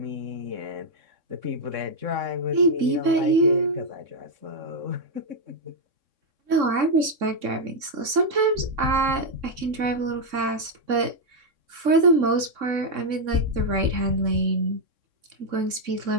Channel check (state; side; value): late; left; 3.6 ms